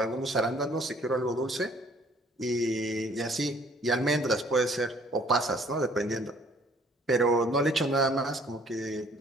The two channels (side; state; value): both; normal; correlation 0.58